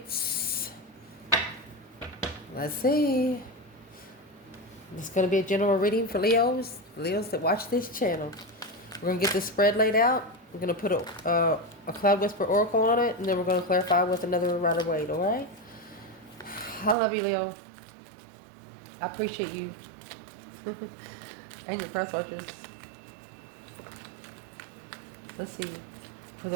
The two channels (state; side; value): drops out; left; at 16.9 s